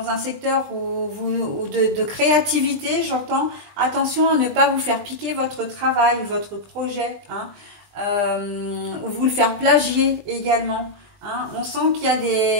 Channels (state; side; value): late; left; 20 ms